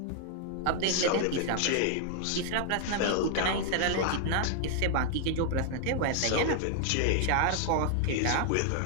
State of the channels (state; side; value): different; both; correlation 0.00